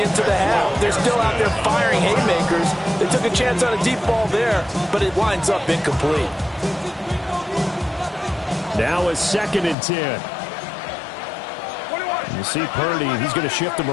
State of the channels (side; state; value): right; drops out; at 9.8 s